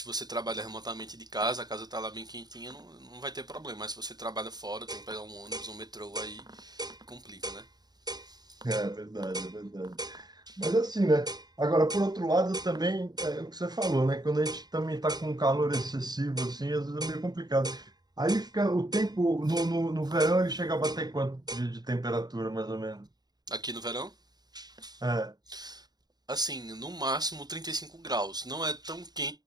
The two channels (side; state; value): left; late; 0.20 ms